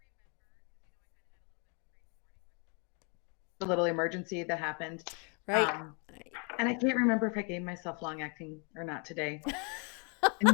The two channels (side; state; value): right; quieter; 35.4 dB